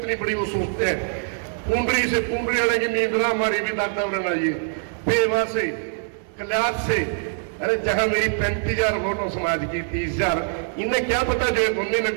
बड़ी वो सोचते हैं। पुंडरी से पुंडरी आने की नींद ना हमारी भी दादा उड़ना ये पेवा से कल्याण से। अरे जहां मेरी 35,000 वोटों समाज की 30,000, इन्हें क्या पता जो उन्होंने ने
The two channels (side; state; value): left; silent; 61 dB below the other